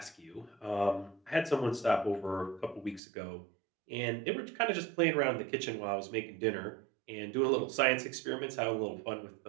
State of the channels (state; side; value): drops out; left; at 3.0 s